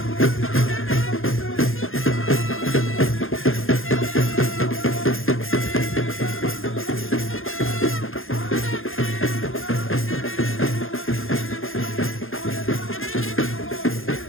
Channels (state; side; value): late; right; 0.60 ms